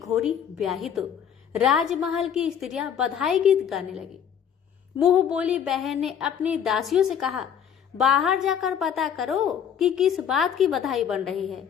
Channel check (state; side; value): quieter; right; 8.4 dB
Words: ब्याही तो राजमहल की स्त्रियां बधाई गीत गाने लगी। मुंह बोली बहन ने अपनी दासियों से कहा, बाहर जाकर पता करो कि किस बात की बधाई बन रही है।